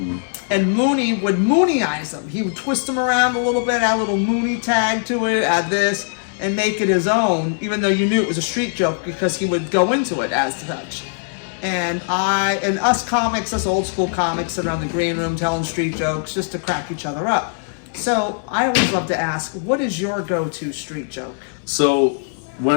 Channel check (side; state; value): right; silent; digital silence